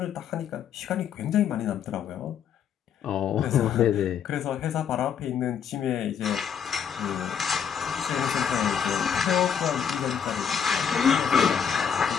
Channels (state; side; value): quieter; right; 7.8 dB